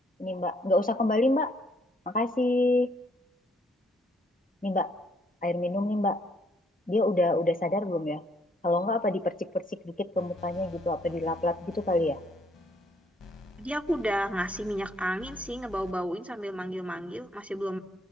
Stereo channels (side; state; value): both; normal; correlation 0.68